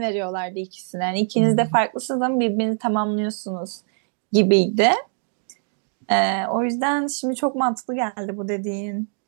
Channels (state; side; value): silent; left; 61 dB below the other